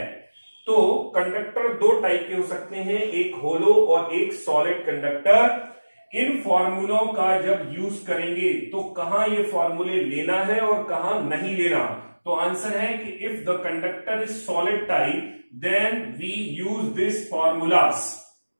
तो कंडक्टर 2 टाइप के हो सकते हैं, एक होलो और एक सॉलिड कंडक्टर। इन फॉर्मूलों का जब यूज करेंगे तो कहां ये फॉर्मूले लेना है और कहां नहीं लेना, तो आंसर है कि if the conductor is solid type then we use this formulas.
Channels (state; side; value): inverted; both; correlation -1.00